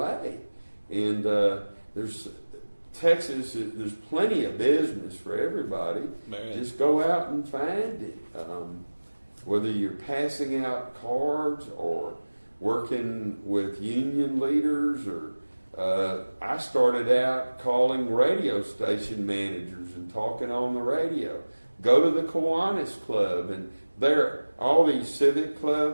And there's Texas, there's plenty of business for everybody. Man. Just go out and find it. Whether you're passing out cards or working with union leaders, or I started out calling radio station managers and talking on the radio. Go to the Kiwanis Club, and there all these civic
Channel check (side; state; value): both; inverted; correlation -1.00